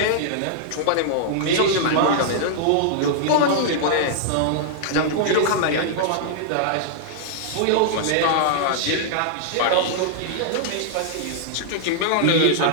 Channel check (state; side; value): different; both; correlation -0.01